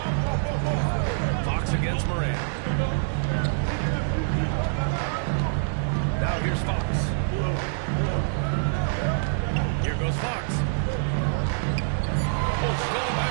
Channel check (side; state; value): left; silent; digital silence